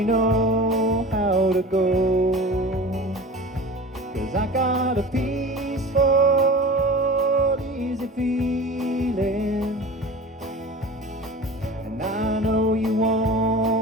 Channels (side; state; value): both; normal; correlation 0.36